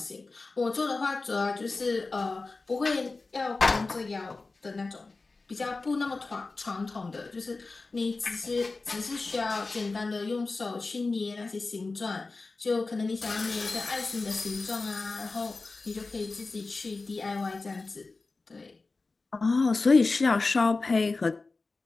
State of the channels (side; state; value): right; quieter; 3.7 dB